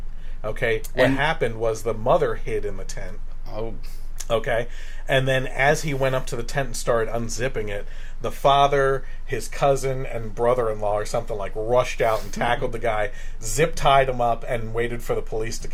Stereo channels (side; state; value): both; identical; correlation 1.00